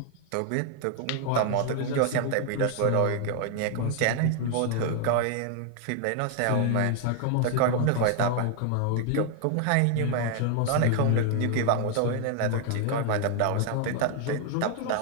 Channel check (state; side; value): different; both; correlation 0.00